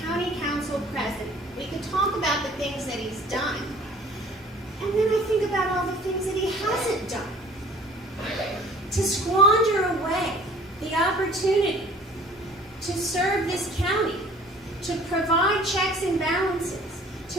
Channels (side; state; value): both; normal; correlation 0.51